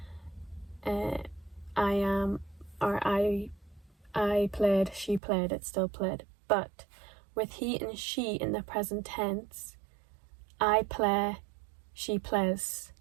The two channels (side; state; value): left; drops out; at 5.2 s